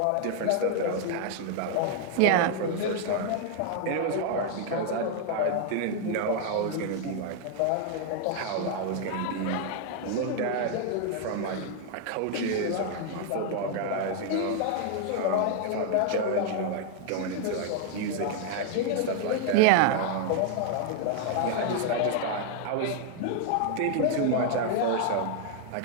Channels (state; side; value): different; both; correlation 0.00